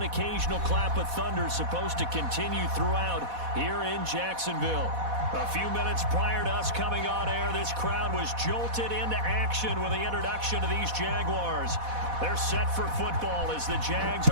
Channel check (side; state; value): left; late; 4.1 ms